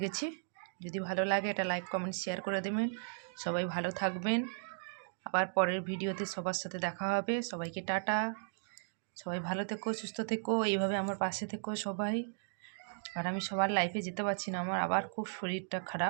গেছি। যদি ভালো লাগে এটা লাইক কমেন্ট শেয়ার করে দেবেন। সবাই ভালো থাকবেন। আবার পরের ভিডিওতে সবার সাথে দেখা হবে। সবাইকে টাটা। সবাই ভালো থেকো, সুস্থ থেকো, এইভাবে আমার পাশে থেকো সবাই। আর আমি সবার লাইফে যেতে পারছি না, আমার আবার খুব শরীরটা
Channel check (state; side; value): silent; left; digital silence